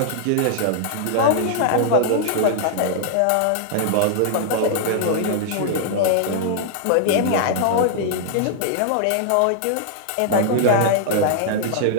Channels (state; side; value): different; both; correlation -0.01